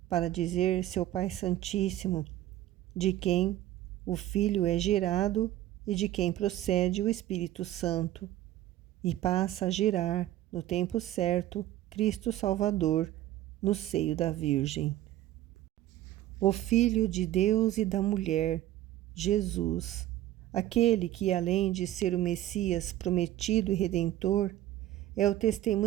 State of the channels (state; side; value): quieter; left; 14.0 dB